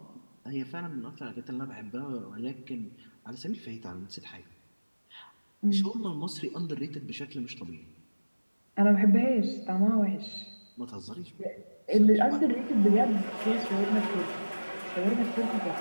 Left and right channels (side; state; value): both; inverted; correlation -1.00